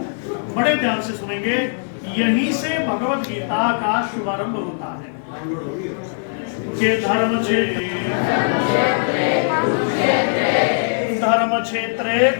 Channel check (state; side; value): silent; right; digital silence